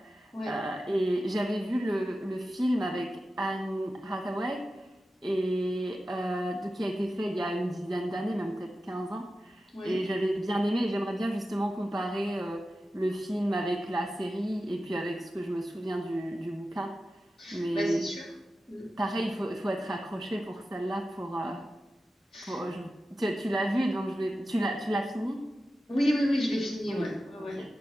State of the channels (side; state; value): both; normal; correlation 0.93